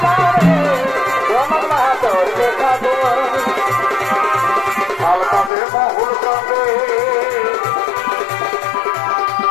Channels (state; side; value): drops out; right; at 5.5 s